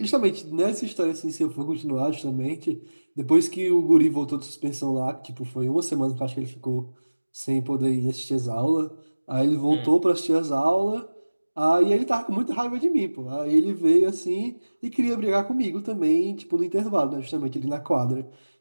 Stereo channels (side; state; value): both; inverted; correlation -1.00